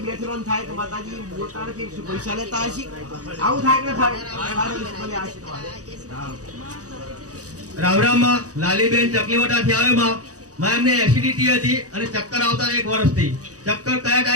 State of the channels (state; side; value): late; left; 0.67 ms